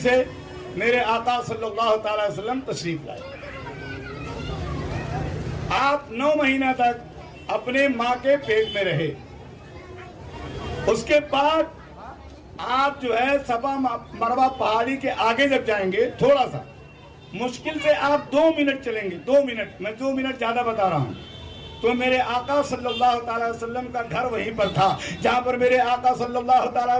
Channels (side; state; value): both; identical; correlation 1.00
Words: میرے آقا صلی اللہ تعالی وسلم تشریف لائے۔ آپ 9 مہینہ تک اپنے ماں کے پیٹ میں رہے۔ اس کے بعد آپ جو ہے صفا مروہ پہاڑی کے آگے جب جائیں گے، تھوڑا سا مشکل سے آپ 2 منٹ چلیں گے، 2 منٹ، میں 2 منٹ زیادہ بتا رہا ہوں، تو میرے آقا صلی اللہ تعالی وسلم کا گھر وہیں پر تھا جہاں پر میرے آقا صلی اللہ تعالی